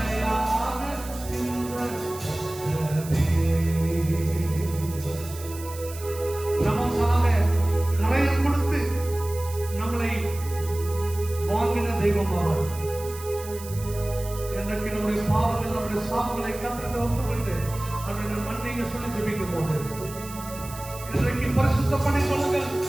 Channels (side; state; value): right; noise; hiss, 15 dB below the sound